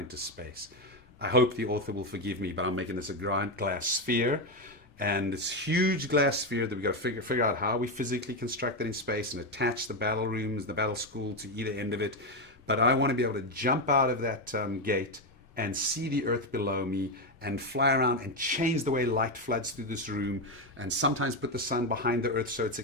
space? I hope the author will forgive me, but I'm making this a giant glass sphere. And this huge glass sphere that we've got to figure out how we physically construct it in space and attach the battle rooms, the battle school to either end of it. But I want to be able to jump out of that gate and see the earth below me and fly around and change the way light floods through this room, and sometimes put the sun behind the earth so it's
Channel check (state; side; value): normal; both; correlation 0.09